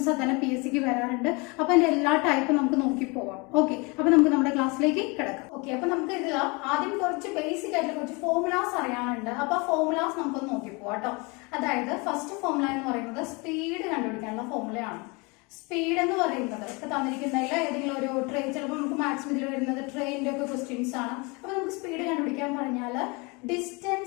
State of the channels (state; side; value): quieter; right; 28.4 dB